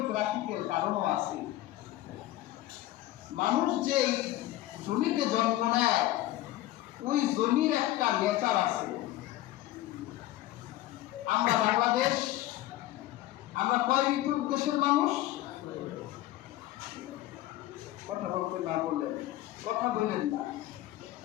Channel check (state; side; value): quieter; right; 15.4 dB